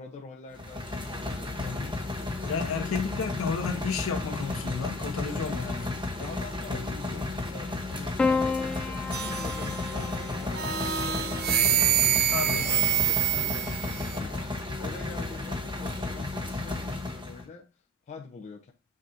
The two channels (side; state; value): both; normal; correlation 0.33